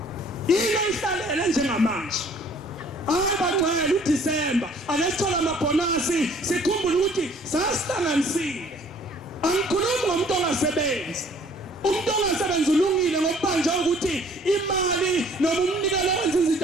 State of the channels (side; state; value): both; normal; correlation 0.56